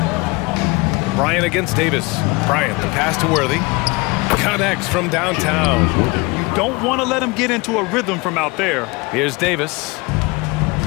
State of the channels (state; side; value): quieter; right; 25.7 dB